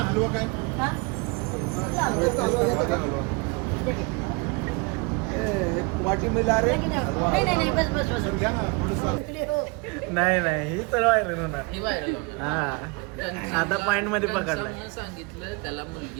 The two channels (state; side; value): quieter; left; 29.2 dB